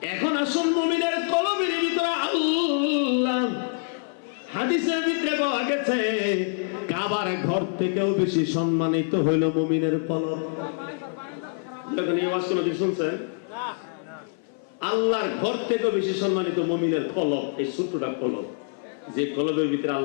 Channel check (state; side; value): silent; right; 56 dB below the other